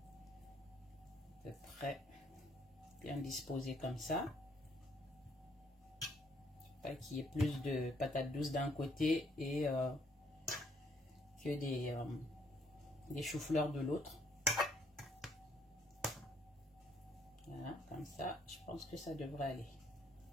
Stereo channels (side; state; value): both; normal; correlation 0.68